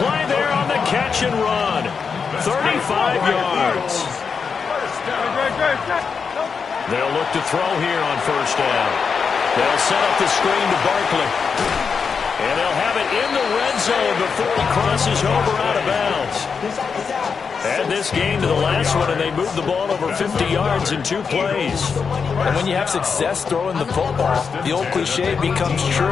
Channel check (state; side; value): quieter; right; 5.8 dB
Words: there on the catch and run. 35 yards. They'll look to throw here on first down. They'll set up the screen to Barkley. And they'll have it in the red zone before he crosses over out of bounds. Add this game to the last one, and they moved the ball over 50 yards in 2 plays. And when you have success throwing the football, the old cliche becomes